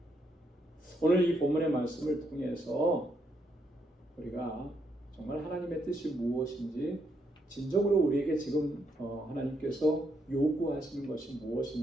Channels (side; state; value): both; normal; correlation 0.76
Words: 오늘 이 본문의 말씀을 통해서 우리가 정말 하나님의 뜻이 무엇인지 진정으로 우리에게 지금 하나님께서 요구하시는 것이